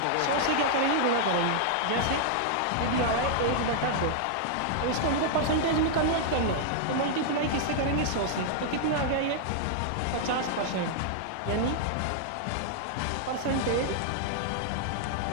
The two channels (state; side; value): different; both; correlation -0.01